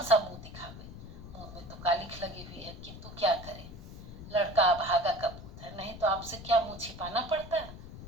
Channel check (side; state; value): left; noise; rumble, 13 dB below the sound